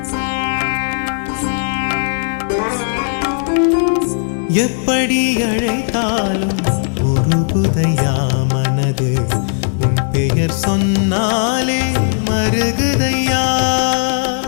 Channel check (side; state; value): right; silent; digital silence